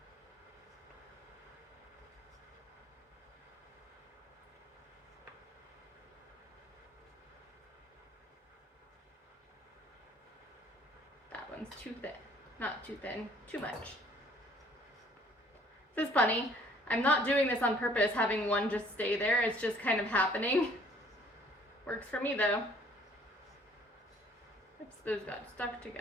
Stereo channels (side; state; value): both; normal; correlation 0.57